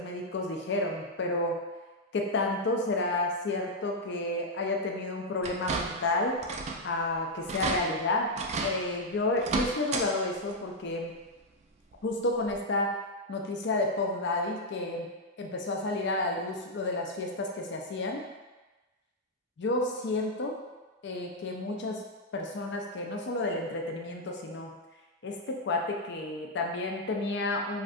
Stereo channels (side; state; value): both; normal; correlation -0.01